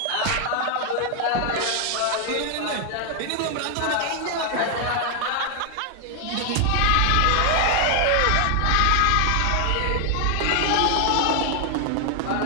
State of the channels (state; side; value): different; both; correlation 0.00